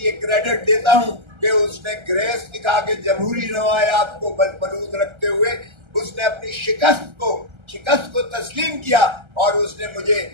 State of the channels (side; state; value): left; late; 1.3 ms